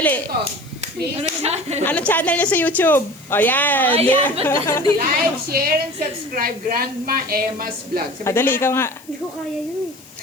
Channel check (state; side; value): noise; left; hiss, 24 dB below the sound